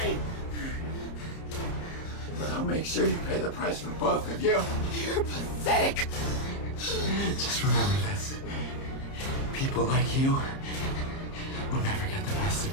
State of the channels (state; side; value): late; right; 30 ms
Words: But I'll make sure you pay the price for both of you. You're pathetic. Just remember this. People like you will never get the best of